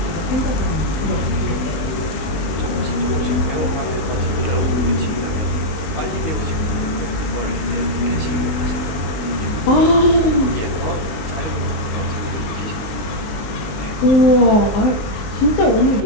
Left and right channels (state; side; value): late; right; 20 ms